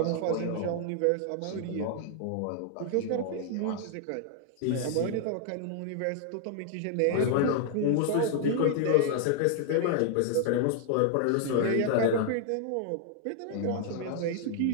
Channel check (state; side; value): different; both; correlation 0.00